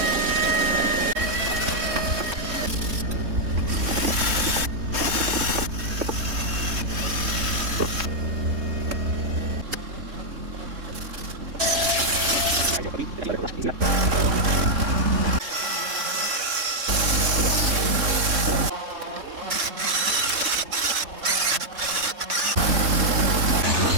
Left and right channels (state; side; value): late; left; 3.6 ms